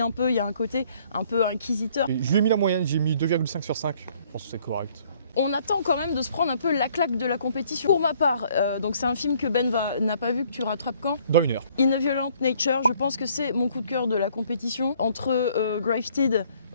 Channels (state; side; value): inverted; both; correlation -0.61